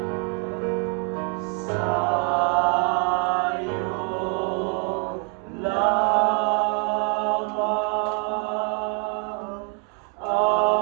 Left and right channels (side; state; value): left; quieter; 34.6 dB